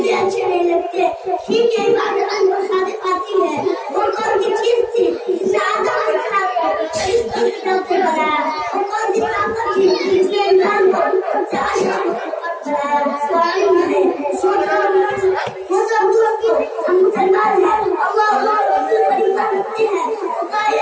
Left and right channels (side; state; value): both; identical; correlation 1.00